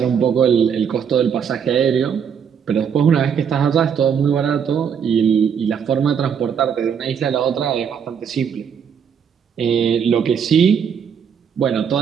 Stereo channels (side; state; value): left; quieter; 7.4 dB